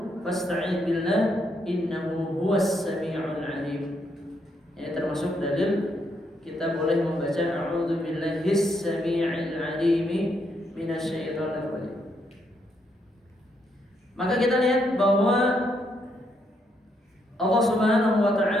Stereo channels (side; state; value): both; normal; correlation 0.76